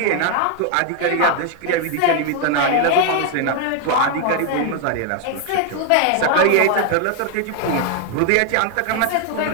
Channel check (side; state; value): both; different; correlation 0.00